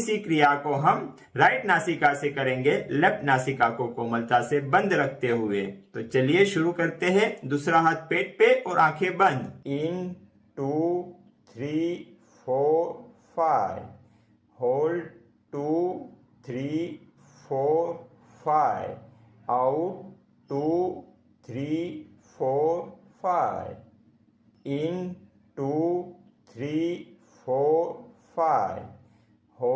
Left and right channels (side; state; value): both; identical; correlation 1.00